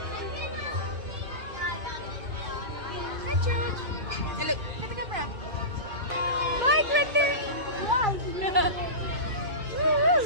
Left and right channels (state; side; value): late; left; 2.2 ms